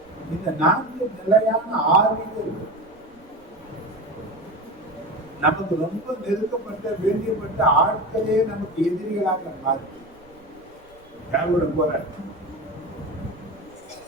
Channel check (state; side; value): noise; right; rumble, 29 dB below the sound